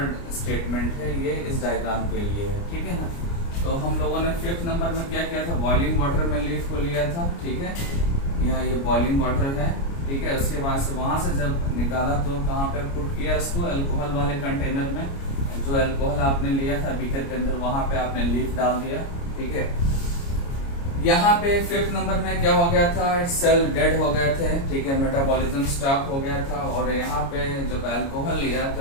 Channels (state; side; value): late; right; 29 ms